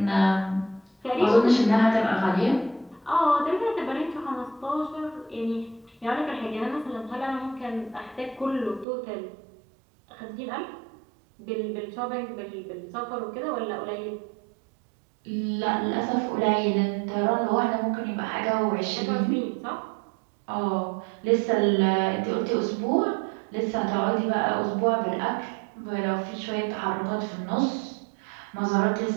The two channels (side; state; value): left; drops out; at 8.8 s